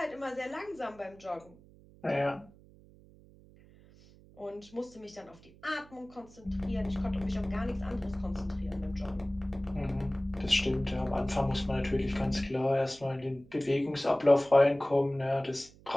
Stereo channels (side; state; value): right; noise; hum, 24 dB below the sound